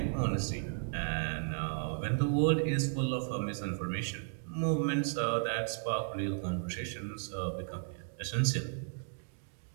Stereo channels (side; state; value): left; silent; digital silence